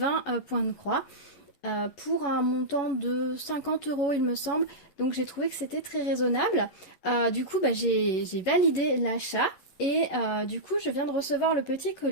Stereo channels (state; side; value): late; right; 11 ms